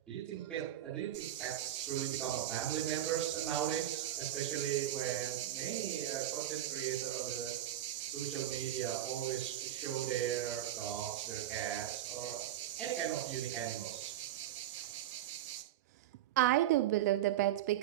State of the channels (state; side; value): quieter; left; 12.7 dB